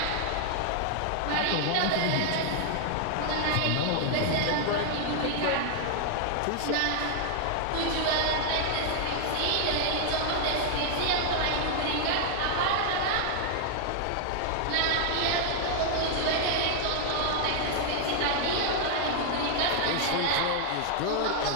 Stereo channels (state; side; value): different; both; correlation 0.00